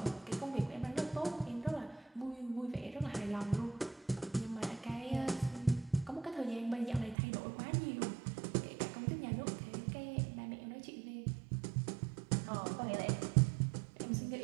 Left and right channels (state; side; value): drops out; left; at 7.2 s